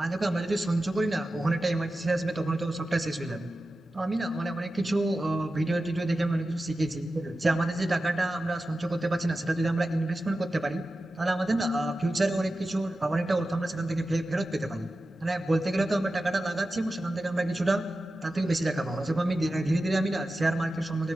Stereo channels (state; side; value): normal; both; correlation 0.93